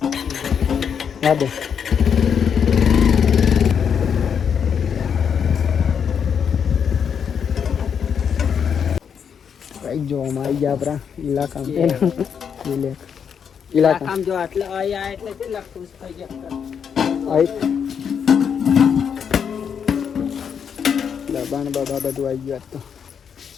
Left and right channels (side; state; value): right; quieter; 7.3 dB